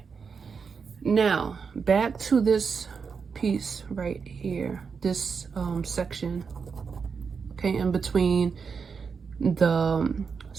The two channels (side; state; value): left; quieter; 5.7 dB